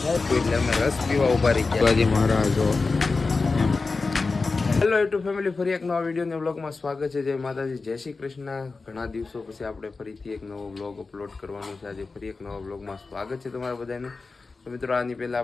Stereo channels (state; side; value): quieter; right; 4.0 dB